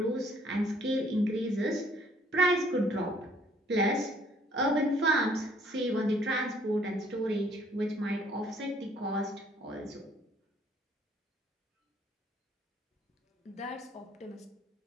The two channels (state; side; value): normal; both; correlation 0.62